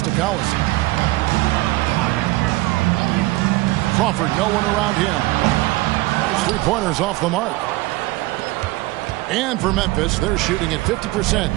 to Collison. Crawford, no one around him. His 3-pointers off the mark. And for Memphis, they're shooting at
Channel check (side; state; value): left; quieter; 20.0 dB